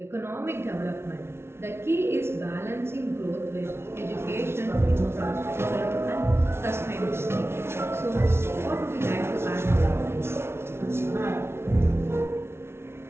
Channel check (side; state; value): left; late; 0.12 ms